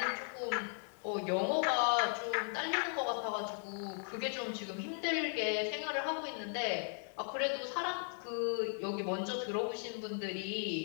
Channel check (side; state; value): right; silent; 53 dB below the other